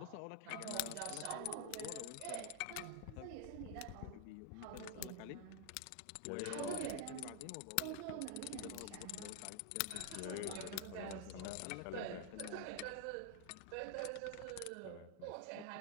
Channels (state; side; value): different; both; correlation 0.00